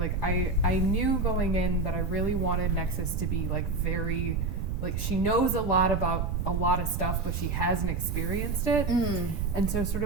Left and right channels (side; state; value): right; noise; rumble, 2 dB below the sound